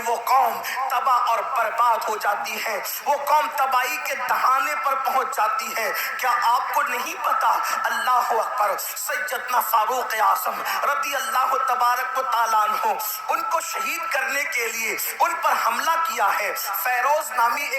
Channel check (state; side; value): identical; both; correlation 1.00